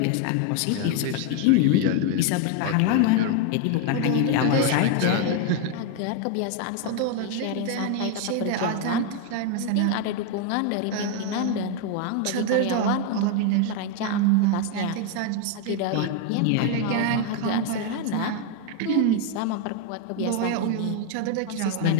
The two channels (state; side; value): different; both; correlation 0.01